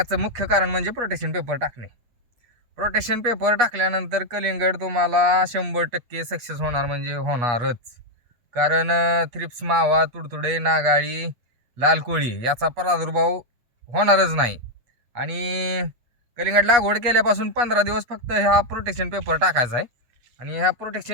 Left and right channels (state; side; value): late; left; 8.3 ms